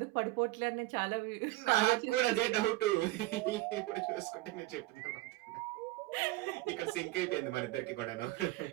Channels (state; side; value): quieter; left; 19.2 dB